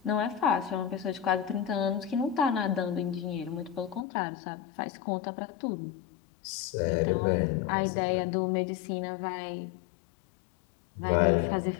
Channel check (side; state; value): right; drops out; at 4.0 s